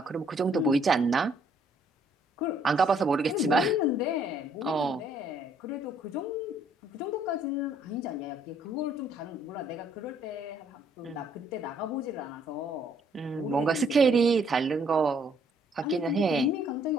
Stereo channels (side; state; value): both; normal; correlation 0.65